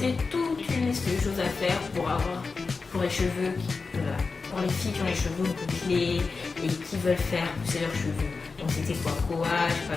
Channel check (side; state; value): right; quieter; 4.4 dB